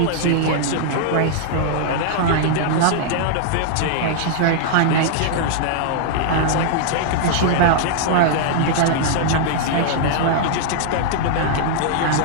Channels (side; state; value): both; different; correlation -0.01